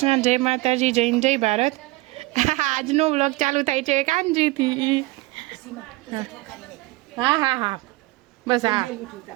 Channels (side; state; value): left; quieter; 20.9 dB